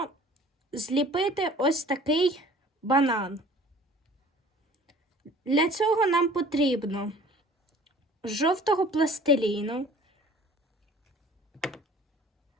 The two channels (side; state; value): both; normal; correlation 0.49